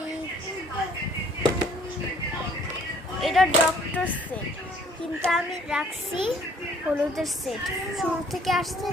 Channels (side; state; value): both; normal; correlation 0.59